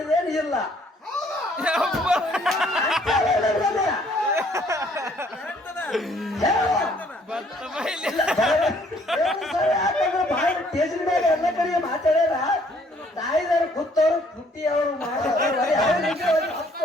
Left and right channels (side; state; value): both; normal; correlation 0.63